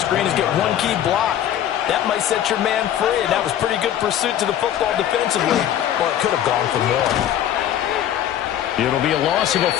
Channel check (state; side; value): quieter; right; 11.0 dB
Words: is get one key block. That might set your man free, and that was pretty good pursuit to the football defensively. Well, it could have gone for more. It'll be a loss of a